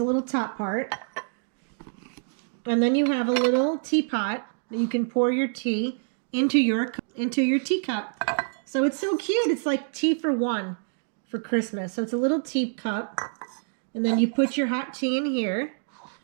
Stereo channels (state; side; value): silent; left; digital silence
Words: little top part. And then you have a little teapot that you can pour your tea into your teacup. So it's so cute. It's like tea for one for Christmas. So it's a little teacup. And then you put your hot tea in here.